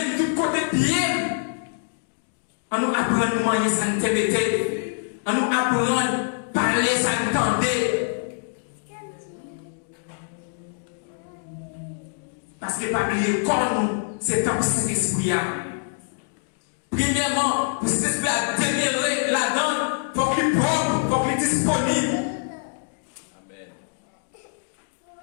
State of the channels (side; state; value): right; silent; digital silence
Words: tout côté pied. On nous apprend à nous manger sans te on nous apprend à parler sans tenter. Parce que pas oublier comme c'est comme cet esprit. Premièrement, pour cet esprit à démêler la donne, il faut qu'il propre, il faut qu'il disponible. Amen.